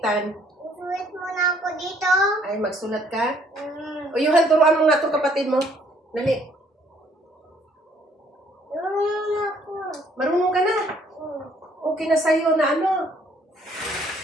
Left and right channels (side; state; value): both; normal; correlation 0.63